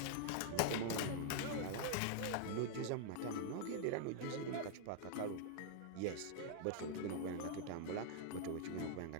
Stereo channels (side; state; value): both; different; correlation -0.01